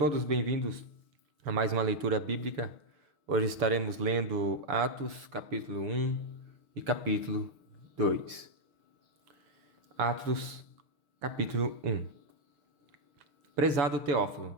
bem-vindos a mais uma leitura bíblica. Hoje estaremos lendo Atos, capítulo 1 e capítulo 2. Atos, capítulo 1. Prezado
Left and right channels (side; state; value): left; late; 7.0 ms